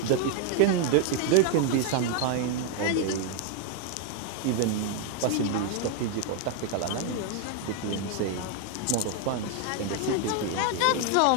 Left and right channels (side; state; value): both; different; correlation 0.01